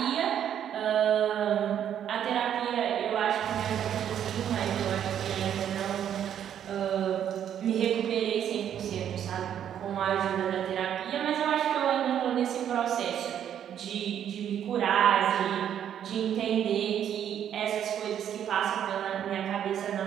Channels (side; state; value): left; quieter; 9.7 dB